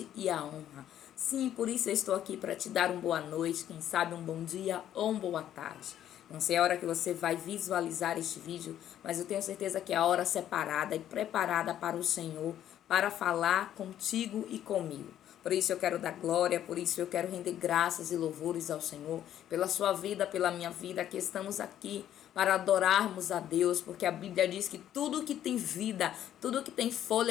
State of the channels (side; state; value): right; quieter; 11.2 dB